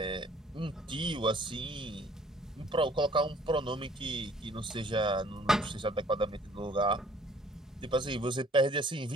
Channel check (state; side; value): normal; both; correlation 0.57